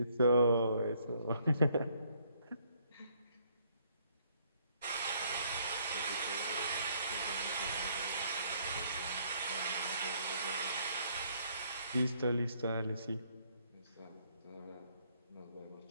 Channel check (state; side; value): inverted; both; correlation -0.67